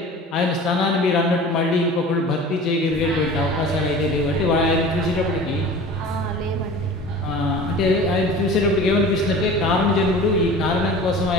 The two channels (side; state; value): both; normal; correlation 0.40